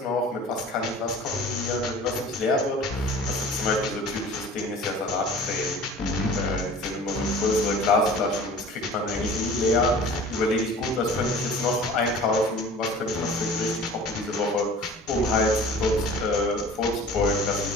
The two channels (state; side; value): normal; both; correlation 0.43